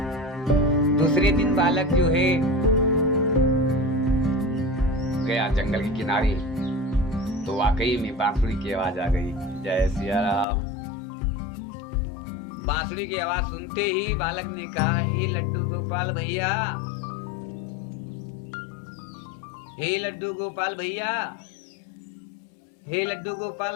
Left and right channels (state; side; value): drops out; right; at 10.5 s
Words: दूसरे दिन बालक जो है गया जंगल के किनारे, तो वाकई में बांसुरी की आवाज आ गई। जय सिया राम। बांसुरी की आवाज सुनते ही बालक ने कहा, हे लड्डू गोपाल भैया, हे लड्डू गोपाल भैया, हे लड्डू